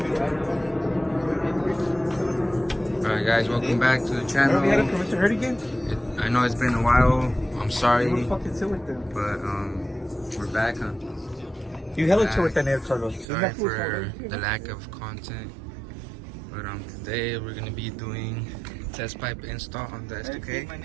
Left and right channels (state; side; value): drops out; left; at 13.2 s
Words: Alright guys, welcome back to the channel. I know it's been a while. I'm sorry, but we're back. You hella chill with that name, Carlos. Sorry for the lack of content, but today we're gonna be doing test pipe install on the S2000. My